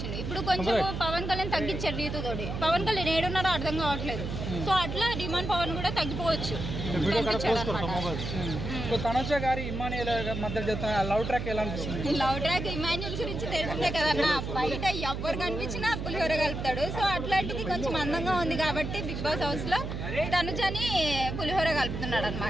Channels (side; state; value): right; noise; hum, 5 dB below the sound